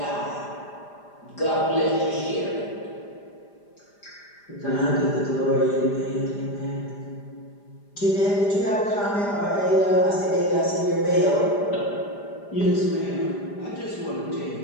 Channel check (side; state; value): right; late; 5.0 ms